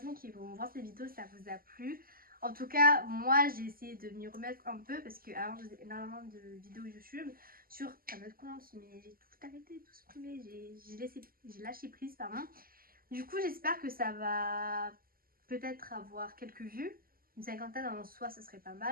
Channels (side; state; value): left; late; 0.42 ms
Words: qui vont voir cette vidéo, ça vous a plu. En tout cas, moi j'ai essayé de m'y remettre un peu parce que avant je faisais énormément de vidéos YouTube sur un autre compte, mais j'ai tout arrêté, tout supprimé, j'ai lâché prise, pardon. Du coup, j'espère que ça va peut-être avoir quelques vues. Une cinquantaine en soi, ça serait pas